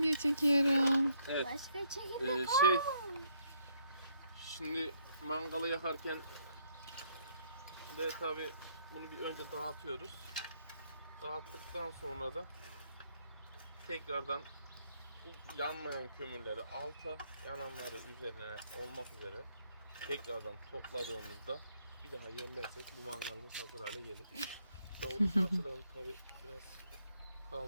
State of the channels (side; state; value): both; inverted; correlation -0.71